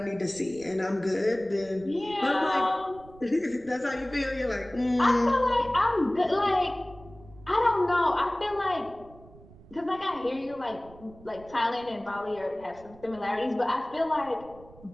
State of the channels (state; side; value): noise; right; rumble, 22 dB below the sound